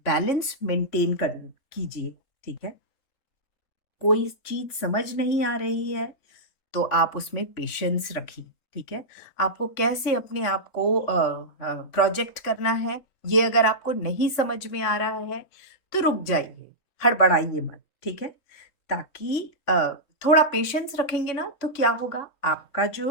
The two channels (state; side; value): late; right; 3.5 ms